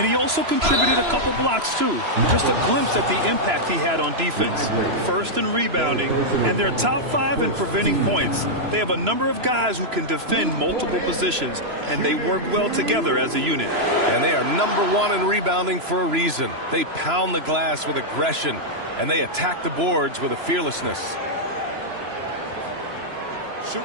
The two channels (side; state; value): left; late; 3.0 ms